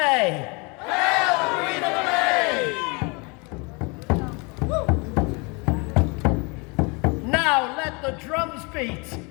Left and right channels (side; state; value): right; quieter; 30.1 dB